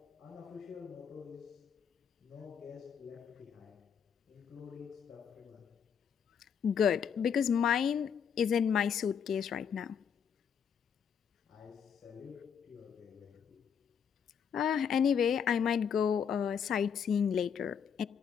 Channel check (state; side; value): quieter; right; 7.4 dB